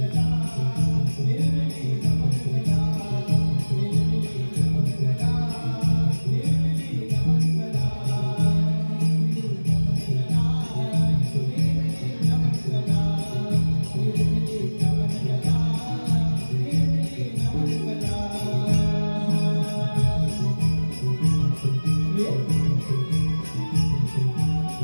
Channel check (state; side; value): inverted; both; correlation -1.00